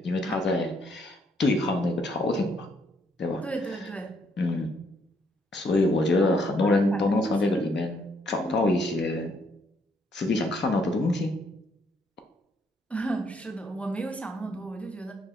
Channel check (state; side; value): normal; both; correlation 0.71